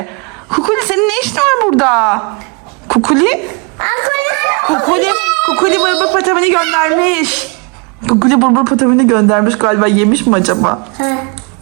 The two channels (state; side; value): quieter; left; 33.3 dB